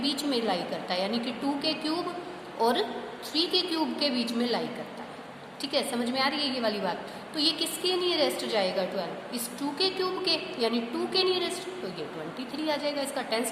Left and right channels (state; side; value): identical; both; correlation 1.00